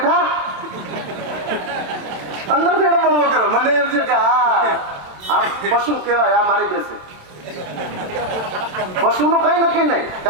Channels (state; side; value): late; left; 27 ms